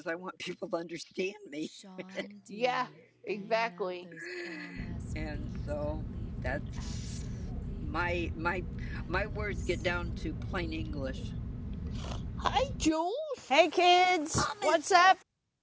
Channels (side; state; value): both; identical; correlation 1.00